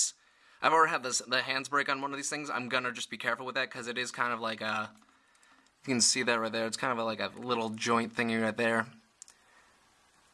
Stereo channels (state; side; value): identical; both; correlation 1.00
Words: I've already had the hands break on one of these things, I'm gonna just be careful with that because it is kind of like a. You can see that right there. It's kind of like a little joint thingy right there